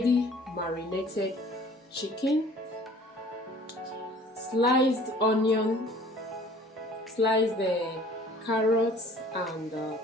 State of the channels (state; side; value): normal; both; correlation 0.51